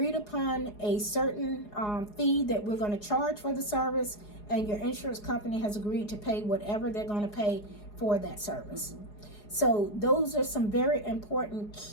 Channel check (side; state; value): right; late; 4.8 ms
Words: upon a certain fee that we're going to charge for the service, and your insurance company has agreed to pay whatever they're going to pay for that service. So those are some very important